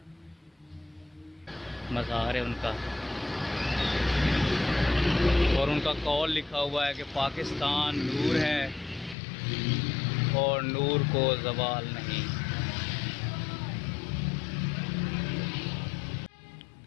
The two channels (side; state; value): right; drops out; at 9.2 s